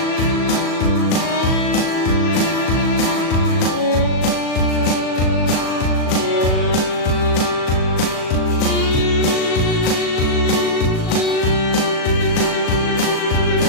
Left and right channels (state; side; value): late; right; 37 ms